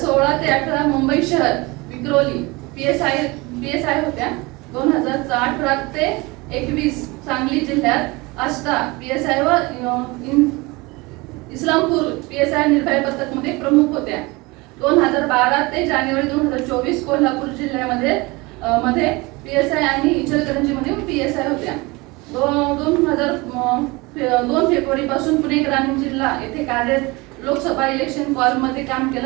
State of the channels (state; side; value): quieter; left; 24.1 dB